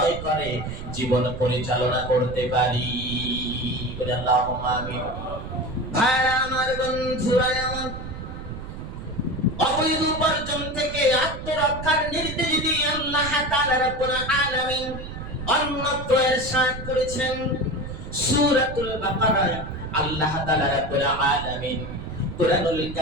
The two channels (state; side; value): noise; right; rumble, 9 dB below the sound